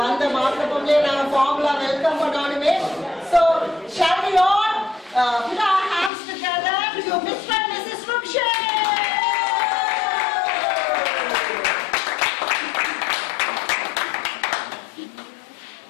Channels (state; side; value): drops out; right; at 6.1 s